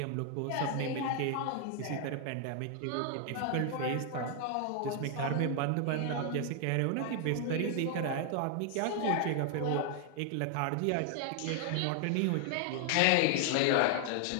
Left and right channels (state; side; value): different; both; correlation 0.00